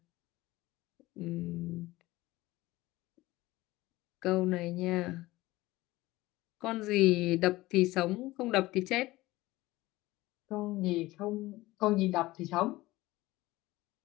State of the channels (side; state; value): right; quieter; 18.7 dB